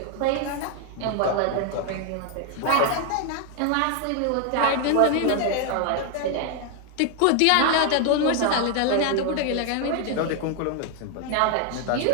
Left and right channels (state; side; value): different; both; correlation 0.01